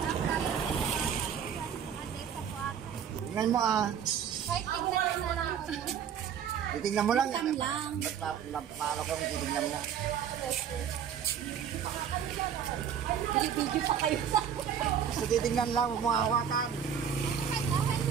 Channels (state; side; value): quieter; left; 8.3 dB